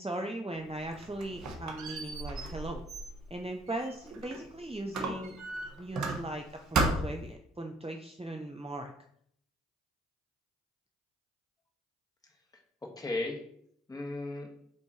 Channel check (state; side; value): normal; both; correlation 0.63